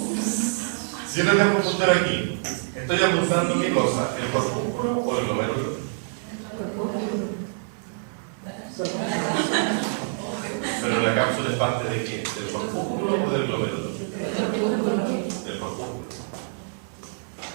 Si yo le dejo el puntero aquí, ¿estoy apuntando qué cosa? ¿El corpúsculo o el glomérulo? Pero la cápsula es parte de qué? ¿Del corpúsculo o del glomérulo? Del corpúsculo.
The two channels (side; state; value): left; silent; digital silence